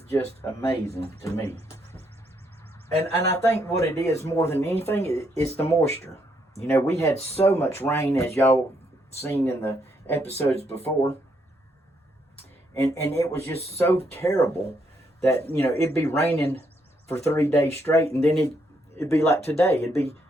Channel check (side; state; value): both; normal; correlation 0.74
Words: just amazing to me. And I think what it is more than anything is the moisture. You know, we had so much rain, as y'all seen in the episodes before. And it was just so terrible that, you know, it'd be raining for 3 days straight, and then it'd be like today. It'd be